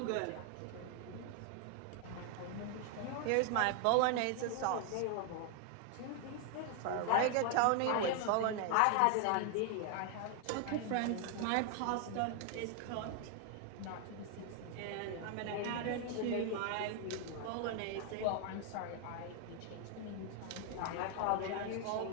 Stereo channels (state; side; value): different; both; correlation 0.00